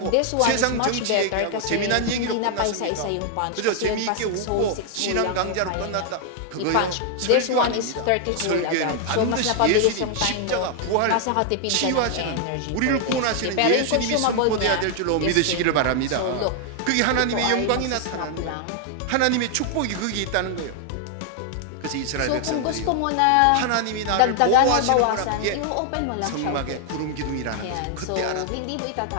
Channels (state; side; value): different; both; correlation 0.00